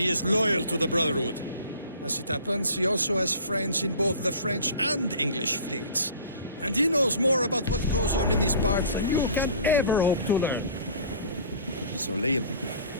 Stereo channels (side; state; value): both; inverted; correlation -0.46